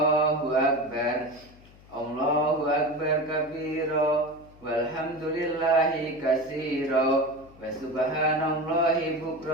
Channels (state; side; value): noise; left; hum, 24 dB below the sound